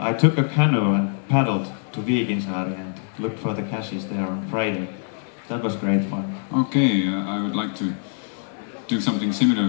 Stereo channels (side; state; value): right; silent; 56 dB below the other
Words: I took a canoe and paddled to Viikinsaari and looked for the caches there on Friday. That was great fun. Okay, I would like to do something similar